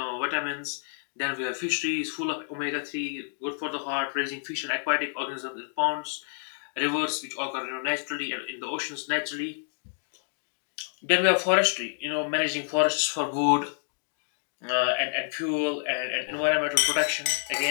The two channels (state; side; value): silent; right; digital silence